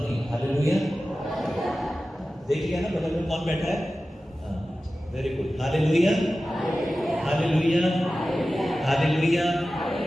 नहीं। हालेलुया। देखिए ना बगल में कौन बैठा है? Very good. Hallelujah, hallelujah, hallelujah.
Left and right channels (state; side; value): normal; both; correlation 0.95